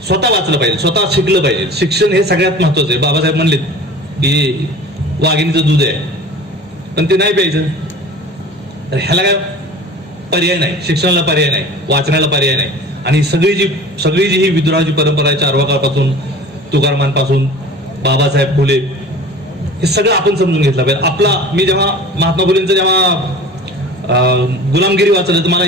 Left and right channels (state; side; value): normal; both; correlation 0.40